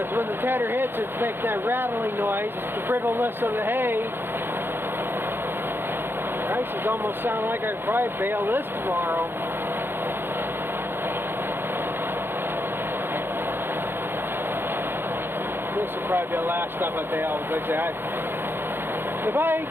when the tedder hits, it's making that rattling noise. It's the brittleness of the hay. Prices almost sound like I'd probably bale this tomorrow. This will probably be the last stuff I bale, because if I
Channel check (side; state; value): left; late; 0.10 ms